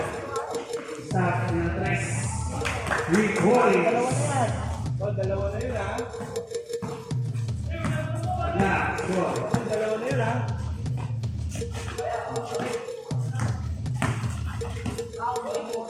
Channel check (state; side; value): identical; both; correlation 1.00